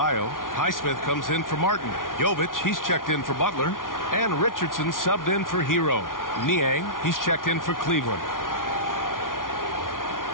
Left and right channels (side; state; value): right; late; 0.89 ms